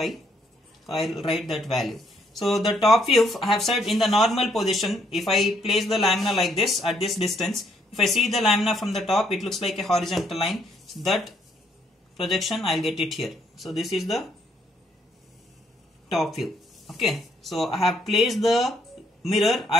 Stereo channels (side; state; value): both; normal; correlation 0.70